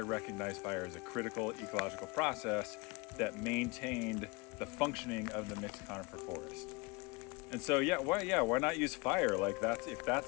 recognize fire as a critical ecological process that maintained the functioning of the mixed conifer forest. And so, why not use fire? Like if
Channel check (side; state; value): right; quieter; 26.6 dB